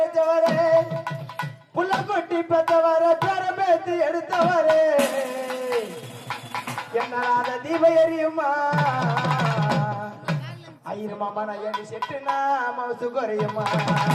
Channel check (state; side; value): identical; both; correlation 1.00